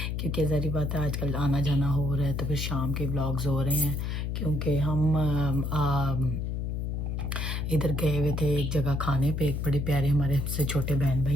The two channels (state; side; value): noise; left; hum, 2 dB below the sound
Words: کیونکہ ظاہری بات ہے آج کل آنا جانا ہو رہا ہے تو پھر شام کے ولاگز ہو رہے ہیں کیونکہ ہم ادھر گئے ہوئے تھے ایک جگہ کھانے پہ. ایک بڑے پیارے ہمارے سے چھوٹے بہن